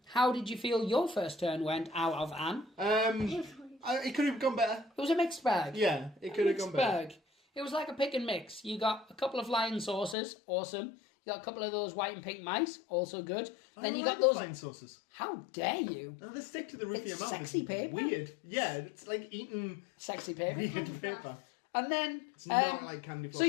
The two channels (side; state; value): right; drops out; at 10.2 s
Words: did you feel your first turn went out of Anne? It could have gone better. It was a mixed bag. Yeah, it could have gone better. Bag. It was like a pick and mix. You got a couple of flying saucers, awesome. You got a couple of those white and pink mice, also good. Then you got those. flying sauces. How dare you? No, they stick to the roof of your It's mouth. sexy It's paper. Weird. Yeah, it's like eating Sexy paper. weird paper. And then. It's not like candy floss. So